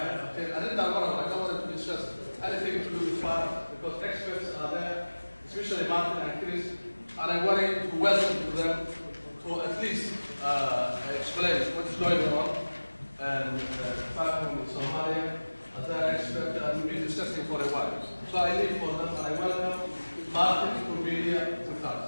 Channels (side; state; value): both; inverted; correlation -1.00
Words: ay qabteen. arrintaan mar hore I don't want to discuss anything to do with fire because experts are there, especially Martin and Chris, and I wanted to welcome to them to at least explain what is going on and fire from Somalia as an expert and we've been discussing for a while. So I leave for them and I welcome Martin to be here with